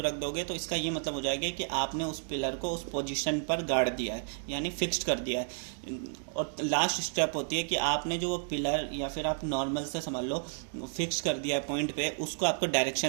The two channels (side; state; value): left; silent; digital silence